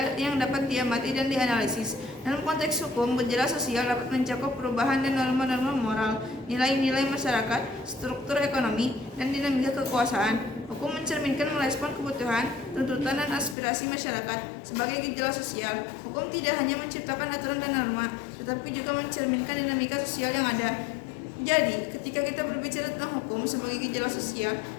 yang dapat diamati dan dianalisis. Dalam konteks hukum, gejala sosial dapat mencakup perubahan dan norma-norma moral, nilai-nilai masyarakat, struktur ekonomi, dan dinamika kekuasaan. Hukum mencerminkan merespon kebutuhan, tuntutan, dan aspirasi masyarakat. Sebagai gejala sosial, hukum tidak hanya menciptakan aturan dan norma, tetapi juga mencerminkan dinamika sosial yang ada. Jadi, ketika kita berbicara tentang hukum sebagai gejala sosial,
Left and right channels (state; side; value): drops out; right; at 13.6 s